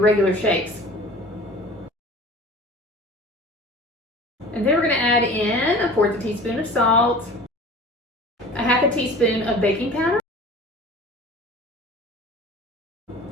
shakes. And then we're going to add in 1/4 teaspoon of salt, 1/2 teaspoon of baking powder,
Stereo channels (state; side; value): normal; both; correlation 0.42